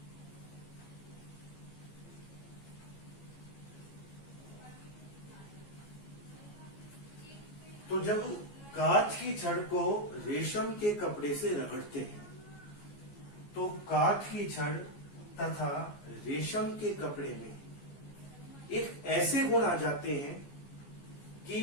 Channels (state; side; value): late; right; 14 ms